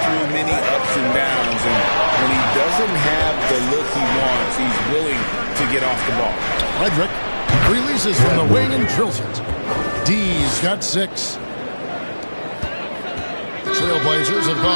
many ups and downs, and when he doesn't have the look he wants, he's willing to get off the ball. Frederick releases from the wing and drills it. D's got 6. The Trailblazers have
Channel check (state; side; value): inverted; both; correlation -1.00